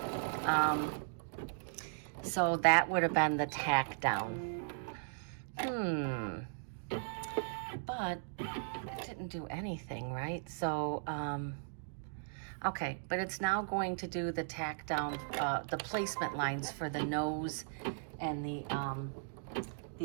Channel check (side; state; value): left; silent; digital silence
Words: So that would have been the tack down. But it didn't do anything, right? So, okay, but it's now going to do the tack down, the placement lines for the nose and the